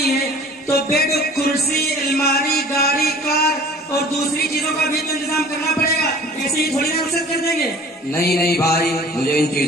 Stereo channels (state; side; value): normal; both; correlation 0.47